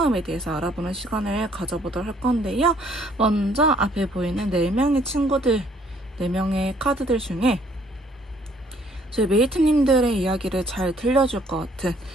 대해서 알아보는 시간을 가져보도록 할 건데요. 먼저 앞에 보이는 4명의 친구들, 4명의 카드들 중에 저희 메이트님들의 이야기를 잘 들려줄 것 같은,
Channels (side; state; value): both; normal; correlation 0.63